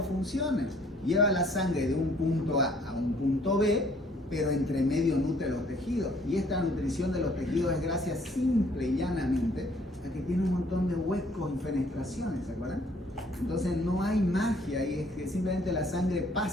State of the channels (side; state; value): both; normal; correlation 0.60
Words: funciones. lleva la sangre de un punto A a un punto B, pero entre medio nutre los tejidos. Y esta nutrición de los tejidos es gracias simple y llanamente a que tiene un montón de huecos y fenestraciones, ¿se acuerdan? Entonces no hay magia ahí, es que simplemente la sangre